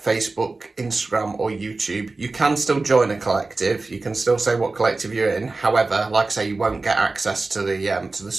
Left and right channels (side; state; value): left; quieter; 3.5 dB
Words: Facebook, Instagram or YouTube, you can still join a collective. You can still say what collective you're in. However, like I say, you won't get access to the